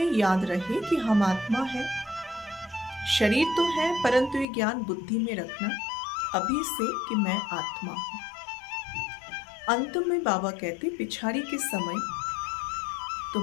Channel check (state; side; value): drops out; right; at 4.5 s